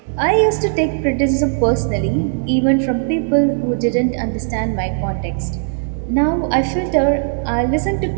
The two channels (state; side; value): silent; left; digital silence